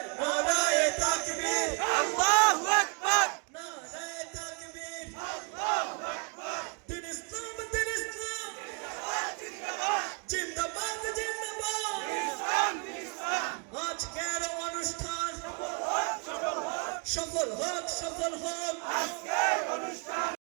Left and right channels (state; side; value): quieter; left; 37.1 dB